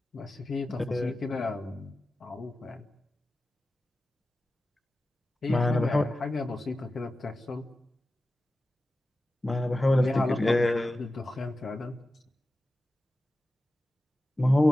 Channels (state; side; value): normal; both; correlation 0.94